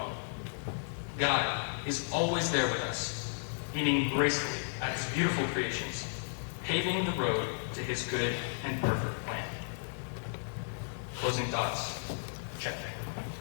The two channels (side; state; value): right; silent; digital silence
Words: God is always there with us, beaming gracefully at His beautiful creations, paving the road to His good and perfect plan. Closing thoughts. Check.